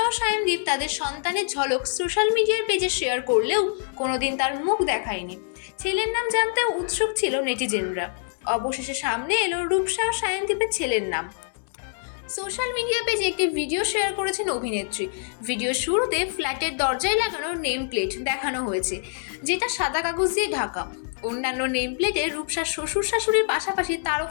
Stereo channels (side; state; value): right; silent; 62 dB below the other